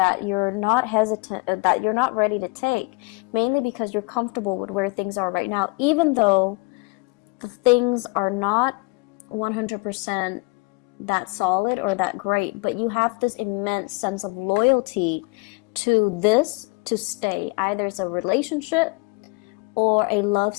you're not hesitant, that you're not ready to take, mainly because you're comfortable with where things are right now, even though the things are not 100% that solid or that great, but you have this immense sense of loyalty to this to stay. Either it's a relationship or a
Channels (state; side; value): quieter; right; 29.8 dB